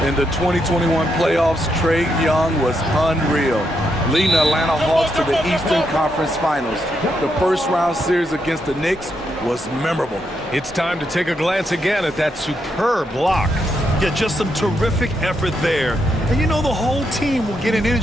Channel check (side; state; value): both; normal; correlation 0.80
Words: In the 2021 playoffs, Trae Young was unreal, leading the Atlanta Hawks to the Eastern Conference Finals. The first-round series against the Knicks was memorable. It's time to take a glance again at that superb block. Yeah, just some terrific effort there. And you know the whole team will get an